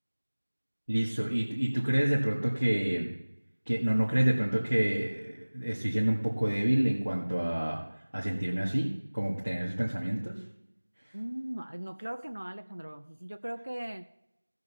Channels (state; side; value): inverted; both; correlation -1.00